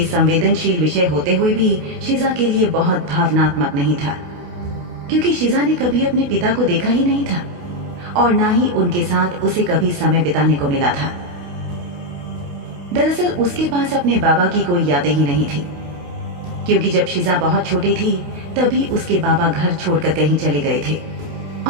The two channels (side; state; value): left; late; 28 ms